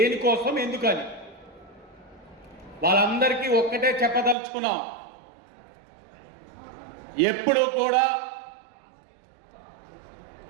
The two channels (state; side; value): drops out; left; at 4.4 s